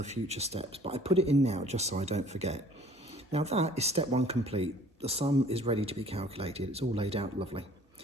future steps, but I put it in now just so I don't forget. Now, that is step 1 complete. The sum is ready to be calculated. It's all laid out lovely.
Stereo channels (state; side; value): normal; both; correlation 0.53